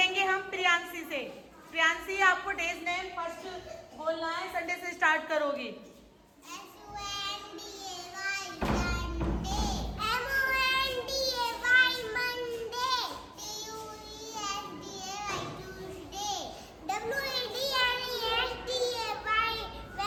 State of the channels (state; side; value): identical; both; correlation 1.00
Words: हम प्रियांशी से। प्रियांशी, आपको डेज नेम फर्स्ट बोलना है, संडे से स्टार्ट करोगी।